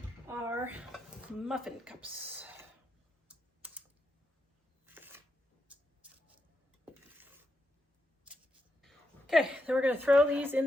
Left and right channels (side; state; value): both; normal; correlation 0.84